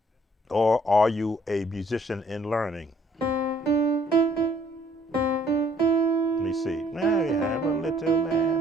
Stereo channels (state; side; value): normal; both; correlation 0.62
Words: Or are you a musician in learning? Let me see. Now we have a little lamb,